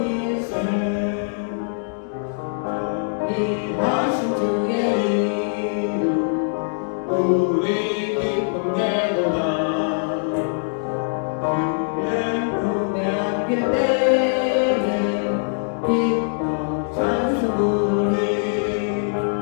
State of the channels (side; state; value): right; silent; digital silence